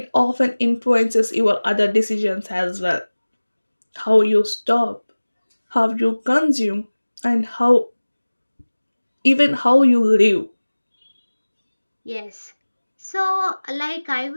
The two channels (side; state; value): both; inverted; correlation -1.00